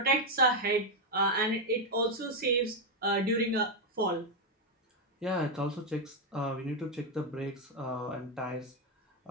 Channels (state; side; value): normal; both; correlation 0.03